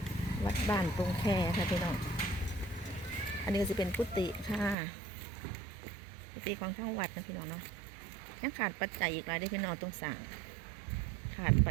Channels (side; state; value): left; drops out; at 4.8 s